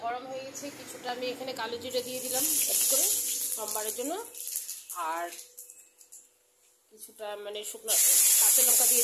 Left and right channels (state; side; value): identical; both; correlation 1.00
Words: গরম হয়ে গেছে, কিছুটা আমি এখানে কালো জিরে দিয়ে দিলাম অ্যাড করে সোমবারের জন্য, আর কিছুটা শুকনো কাঁচা লঙ্কা